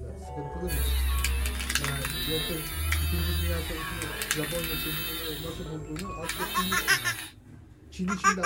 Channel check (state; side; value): identical; both; correlation 1.00